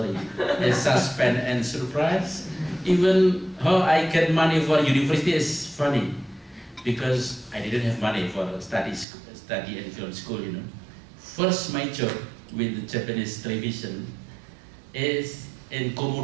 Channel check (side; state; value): left; drops out; at 9.1 s